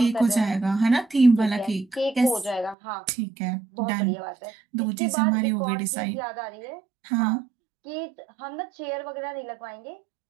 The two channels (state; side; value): drops out; left; at 2.8 s